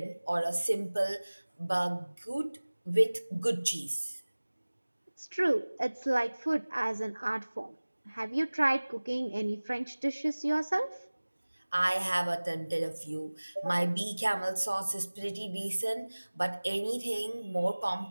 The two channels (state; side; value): inverted; both; correlation -1.00